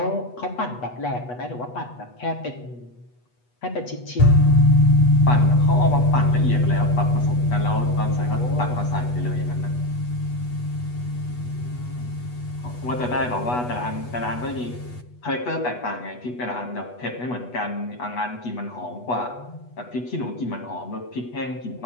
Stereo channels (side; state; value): right; late; 8.2 ms